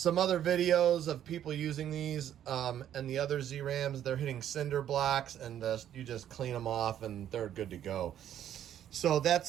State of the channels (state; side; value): quieter; left; 10.6 dB